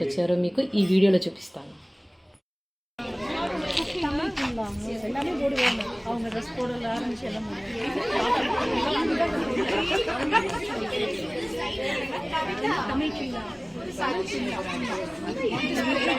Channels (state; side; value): identical; both; correlation 1.00